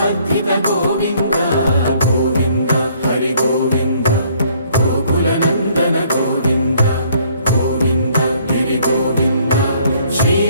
గోవింద గోవింద హరి గోవింద గోకుల నందన గోవింద గోవింద గిరి గోవింద శ్రీ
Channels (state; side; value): inverted; both; correlation -0.63